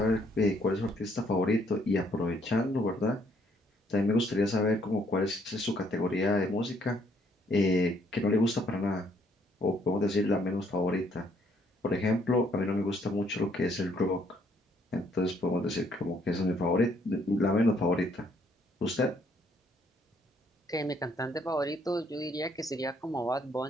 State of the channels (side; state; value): both; normal; correlation 0.68